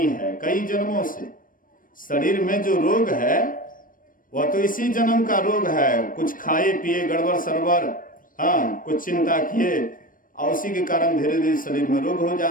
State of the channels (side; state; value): right; late; 0.40 ms